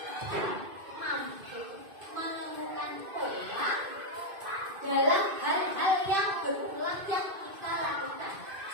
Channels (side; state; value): left; late; 2.5 ms